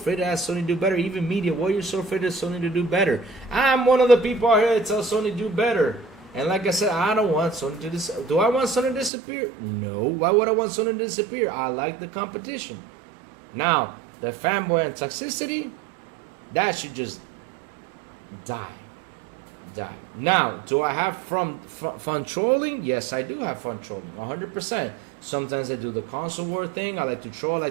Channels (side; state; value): left; drops out; at 9.1 s